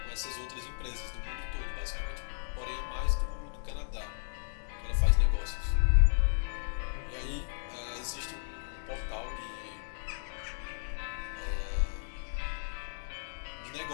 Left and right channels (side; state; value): right; silent; digital silence